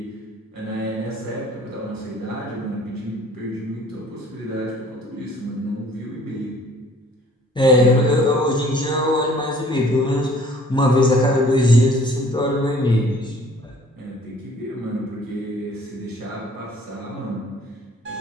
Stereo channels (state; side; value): normal; both; correlation 0.55